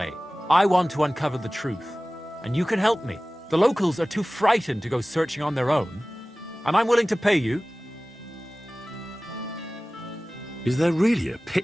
I want to uncover the truth. And you can help me. The locals are too frightened to go searching on their own. And I'm willing to pay you. Is there really a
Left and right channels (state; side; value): normal; both; correlation 0.98